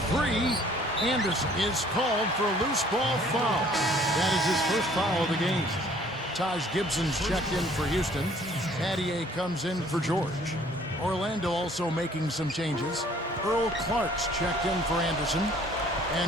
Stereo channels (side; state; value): both; normal; correlation 0.57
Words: Anderson is called for a loose ball foul. That is his first foul of the game. Taj Gibson's checked in for Houston. Adier comes in for George. Orlando also making some changes. Earl Clark's checked in for Anderson.